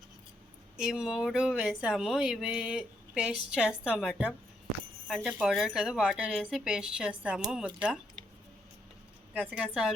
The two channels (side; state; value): both; normal; correlation 0.76